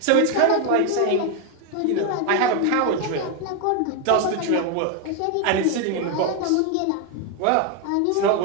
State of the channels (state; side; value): different; both; correlation 0.01